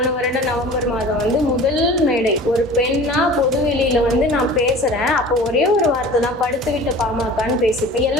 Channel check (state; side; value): normal; both; correlation 0.41